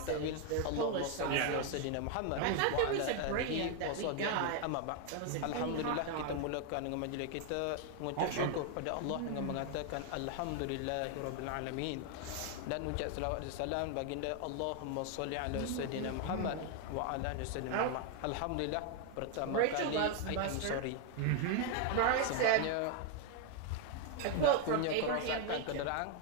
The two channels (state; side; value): different; both; correlation 0.01